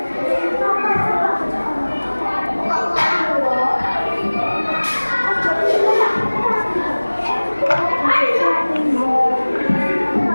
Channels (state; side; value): inverted; both; correlation -1.00